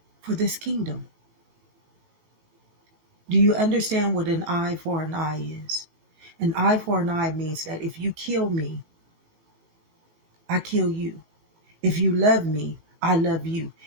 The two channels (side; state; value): left; late; 18 ms